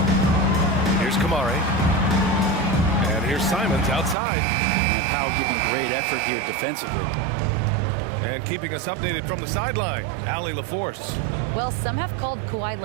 Here's Kamare. And here's Simons outside. And Powell giving great effort here defensively. And keeping us updated from the sideline, Allie LaForce. Well, some have called Kawhi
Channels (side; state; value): left; drops out; at 4.2 s